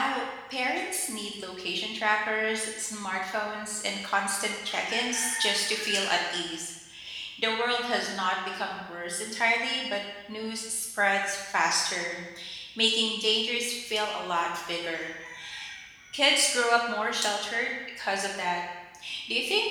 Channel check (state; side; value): identical; both; correlation 1.00